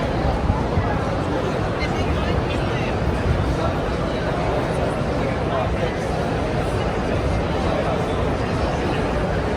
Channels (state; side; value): identical; both; correlation 1.00